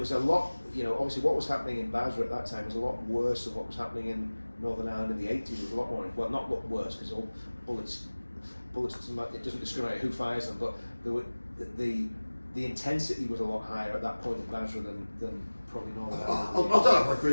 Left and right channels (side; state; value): both; inverted; correlation -1.00